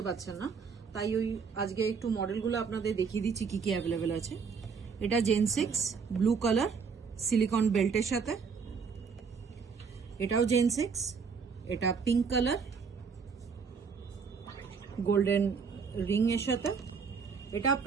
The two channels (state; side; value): quieter; left; 5.7 dB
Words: পারছেন না, তাই ওই আজকে একটু মডেলগুলো আপনাদের দেখিয়ে দিচ্ছি কি কি অ্যাভেলেবেল আছে। এটা জেন 6 ব্লু কালার সিলিকন বেল্টের সাথে। এটাও জেন 6, এটা পিঙ্ক কালার গোল্ডেন রিং এর সাথে। এটা